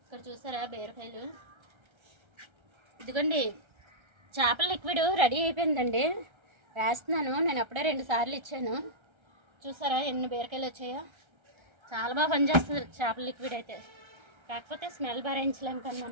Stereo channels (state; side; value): late; left; 1.3 ms